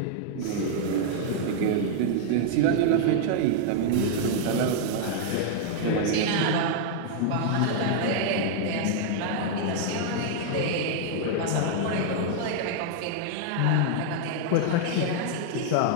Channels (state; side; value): different; both; correlation -0.01